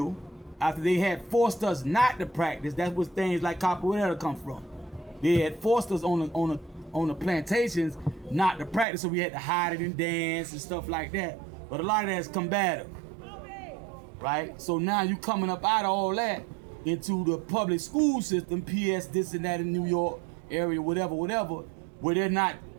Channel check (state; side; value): drops out; left; at 8.8 s